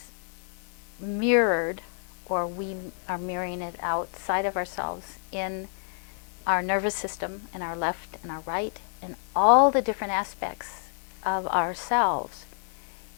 mirrored, or we are mirroring it outside of ourselves in our nervous system, in our left and our right, and all the different aspects of ourselves,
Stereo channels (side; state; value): right; silent; digital silence